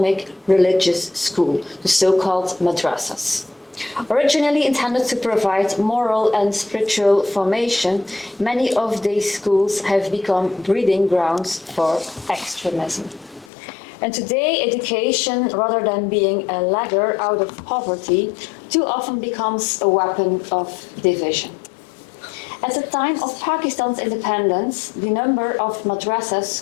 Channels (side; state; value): right; drops out; at 13.5 s